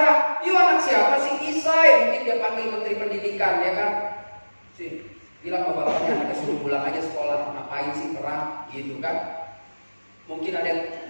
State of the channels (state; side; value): inverted; both; correlation -1.00